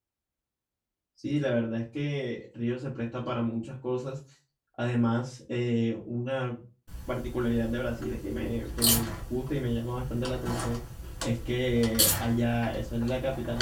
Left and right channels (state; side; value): identical; both; correlation 1.00